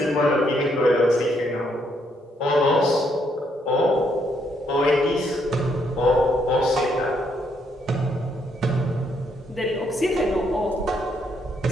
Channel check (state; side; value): normal; both; correlation 0.73